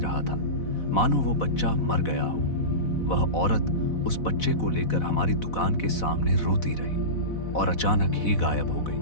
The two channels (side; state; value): right; late; 4.1 ms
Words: था, मानो वो बच्चा मर गया हो। वह औरत उस बच्चे को लेकर हमारी दुकान के सामने रोती रही और अचानक ही गायब हो गई।